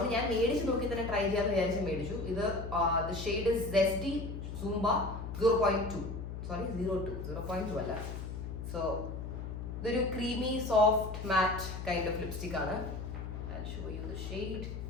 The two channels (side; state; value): left; noise; hum, 7 dB below the sound